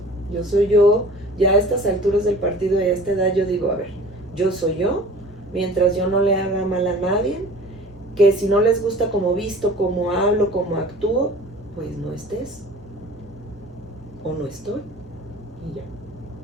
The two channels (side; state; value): both; normal; correlation 0.44